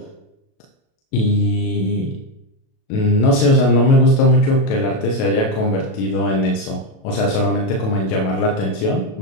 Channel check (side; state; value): right; late; 37 ms